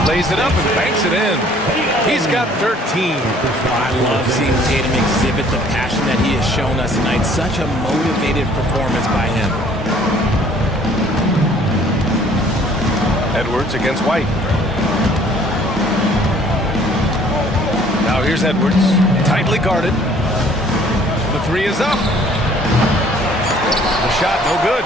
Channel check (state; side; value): normal; both; correlation 0.57